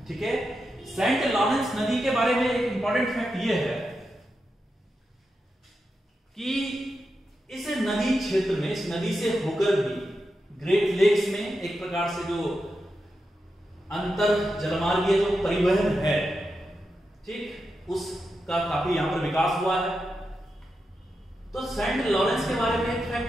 ठीक है, सेंट लॉरेंस नदी के बारे में एक इंपॉर्टेंट फैक्ट ये है कि इस नदी क्षेत्र में, इस नदी से होकर भी ग्रेट लेक्स में एक प्रकार से जो अंतर जलमार्गीय जो परिवहन है, ठीक, उसका काफी यहां पर विकास हुआ है। तो सेंट लॉरेंस के बारे में एक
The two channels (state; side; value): normal; both; correlation 0.88